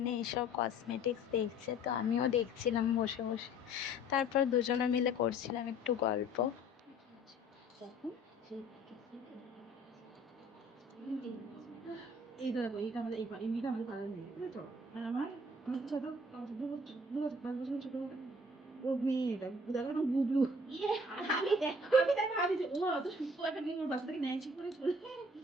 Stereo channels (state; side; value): normal; both; correlation 0.53